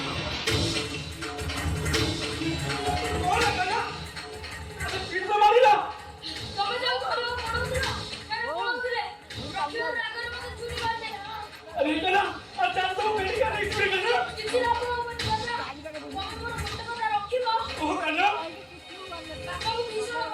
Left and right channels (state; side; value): identical; both; correlation 1.00